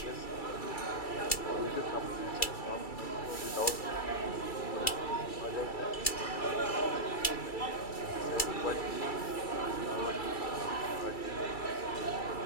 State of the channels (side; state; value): right; late; 2.3 ms